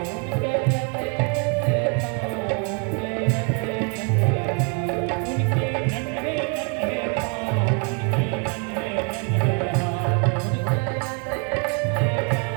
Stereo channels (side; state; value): left; quieter; 37.5 dB